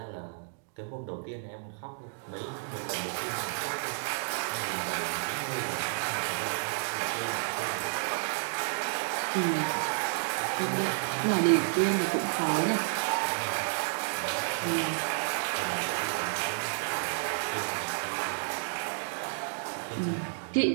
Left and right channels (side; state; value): left; silent; digital silence